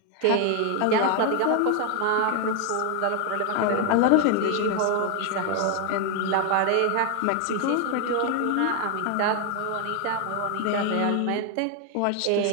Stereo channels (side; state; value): both; different; correlation 0.00